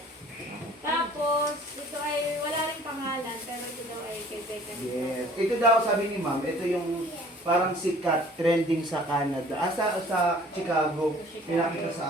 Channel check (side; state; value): both; normal; correlation 0.52